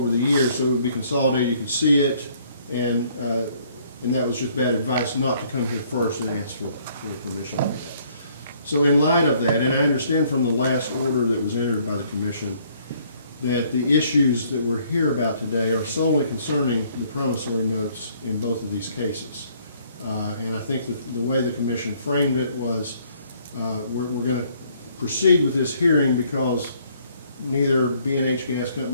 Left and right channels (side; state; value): both; inverted; correlation -0.63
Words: the years, so it would be consolidated, you could see it, and that was just bad advice not to come here first and ask for permission like that. So in light of that, and I understand from the last order that was entered by the commission that the issues that we're here about today are solely concerning the promissory notes in both of these cases. And I think that the way the commission framed it was we're going to proceed with this hearing because neither B&H Gas